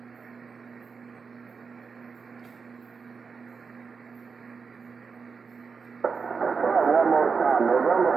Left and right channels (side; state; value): left; quieter; 5.3 dB